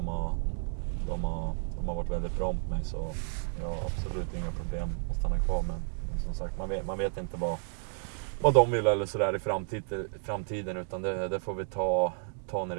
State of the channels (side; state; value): left; silent; 57 dB below the other